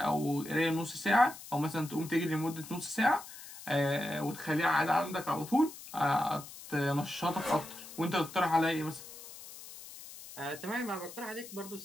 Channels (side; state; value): left; noise; hiss, 15 dB below the sound